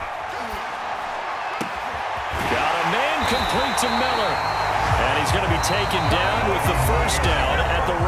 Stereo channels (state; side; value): identical; both; correlation 1.00